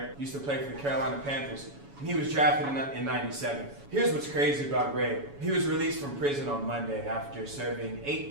used to play for the Carolina Panthers, and he was drafted in 97. Here's what's crazy about Ray. He was released from prison on Monday after serving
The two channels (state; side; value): late; left; 7.1 ms